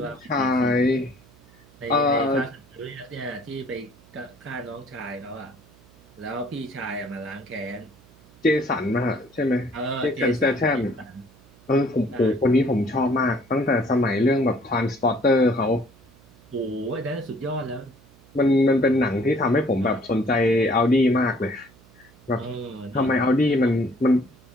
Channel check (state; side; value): noise; right; hum, 27 dB below the sound